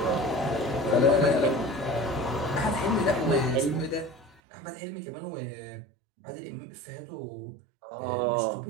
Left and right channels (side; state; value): left; drops out; at 4.4 s